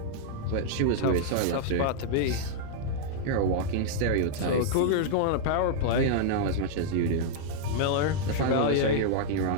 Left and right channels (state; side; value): different; both; correlation -0.01